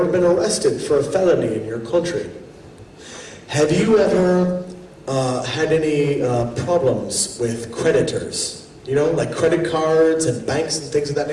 been arrested for a felony in your country? Have you ever had any problems with creditors? You know, like credit cards and banks and things of that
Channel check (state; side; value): identical; both; correlation 1.00